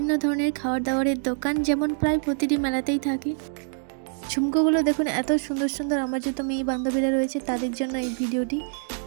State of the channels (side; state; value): left; silent; 61 dB below the other